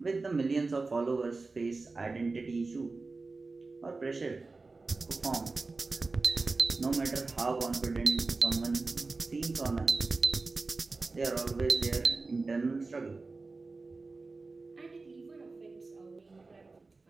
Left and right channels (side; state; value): left; quieter; 3.8 dB